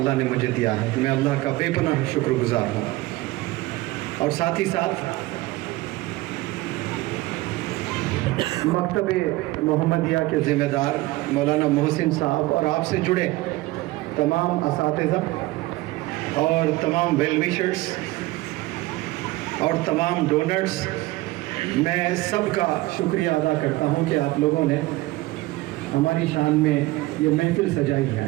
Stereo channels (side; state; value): left; quieter; 19.4 dB